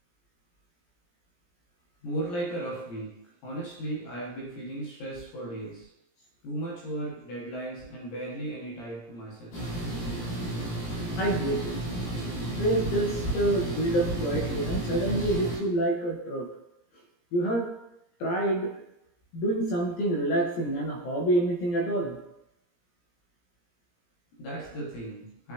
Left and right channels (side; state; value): right; late; 17 ms